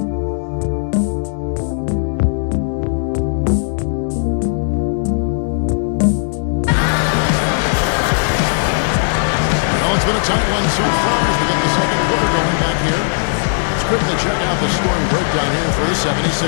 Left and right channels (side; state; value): right; silent; digital silence